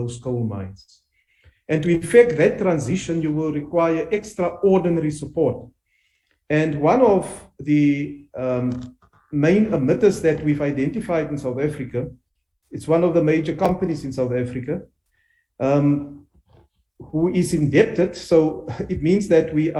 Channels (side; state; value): both; identical; correlation 1.00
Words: coal mines. And to effect that transition, you will require extraordinary support. And one of the main emitters that we've identified in South Africa, it's one of the major companies in South Africa, who is indebted. So it means that we